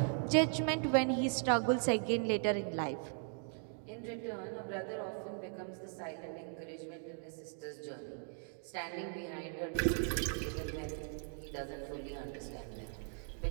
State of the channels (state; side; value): silent; left; 52 dB below the other